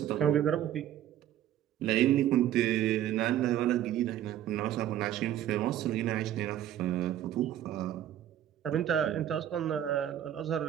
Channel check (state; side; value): quieter; left; 11.6 dB